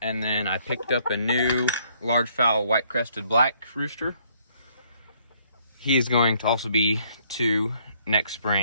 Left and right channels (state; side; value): inverted; both; correlation -0.65